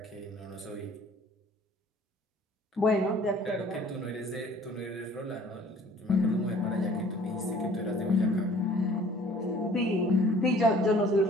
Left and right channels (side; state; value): both; normal; correlation 0.53